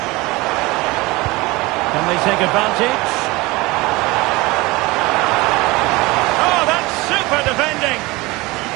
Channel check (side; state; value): left; quieter; 22.3 dB